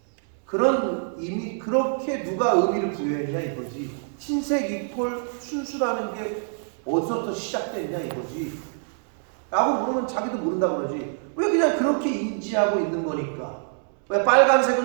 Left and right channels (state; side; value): silent; left; 60 dB below the other